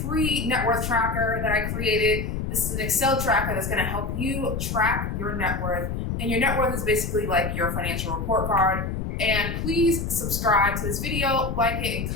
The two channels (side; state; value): left; noise; rumble, 3 dB below the sound